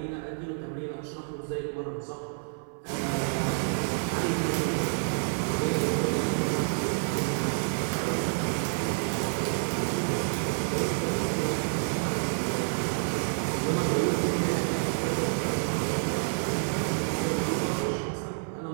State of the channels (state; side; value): silent; left; 57 dB below the other